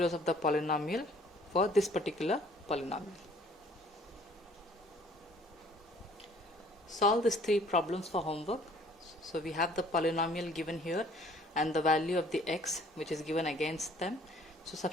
of the polynomial for this particular polynomial. Solve these three problems for homework. So we have the polynomial given here and the value of the x which is given against them. So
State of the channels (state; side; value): normal; both; correlation 0.56